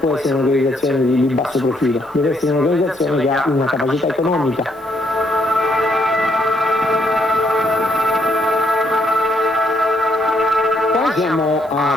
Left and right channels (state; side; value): noise; right; hiss, 30 dB below the sound